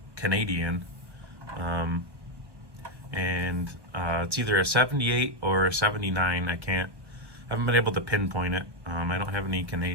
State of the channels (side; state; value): left; late; 1.2 ms